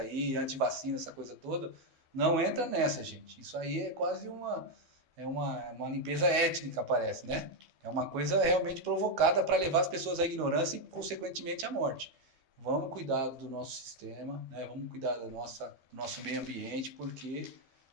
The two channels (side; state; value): left; late; 12 ms